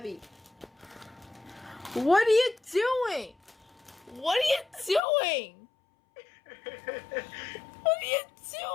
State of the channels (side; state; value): right; drops out; at 5.0 s